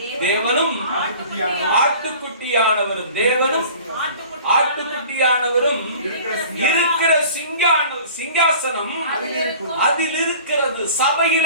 தேவனும் ஆட்டுக்குட்டியானவரும், தேவனும் ஆட்டுக்குட்டியானவரும் இருக்கிற சிங்காசனம் அதில் இருக்கிறது.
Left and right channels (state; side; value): inverted; both; correlation -0.45